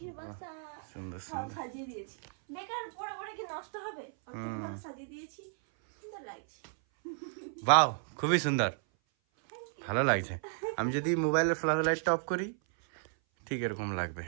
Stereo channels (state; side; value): silent; left; 55 dB below the other